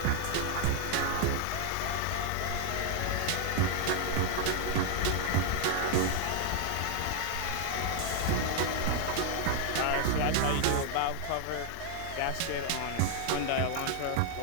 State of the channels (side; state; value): both; different; correlation 0.00